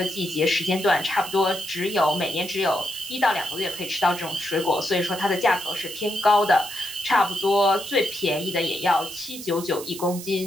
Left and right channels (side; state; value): right; noise; hiss, 12 dB below the sound